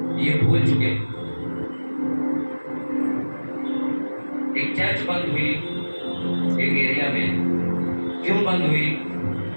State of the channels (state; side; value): inverted; both; correlation -1.00